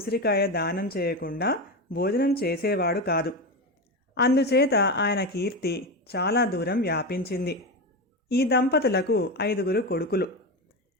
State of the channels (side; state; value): both; normal; correlation 0.17